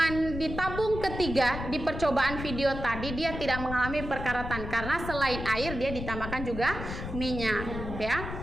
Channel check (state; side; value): noise; left; rumble, 7 dB below the sound